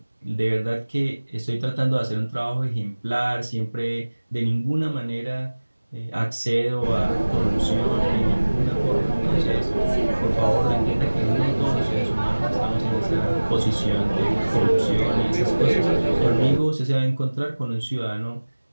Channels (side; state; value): both; inverted; correlation -1.00